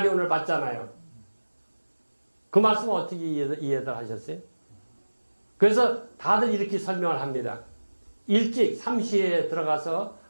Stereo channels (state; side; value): inverted; both; correlation -1.00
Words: 받잖아요. 그 말씀은 어떻게 이해들 하셨어요? 그래서 다들 이렇게 설명을 합니다. 일찍 3시에 들어가서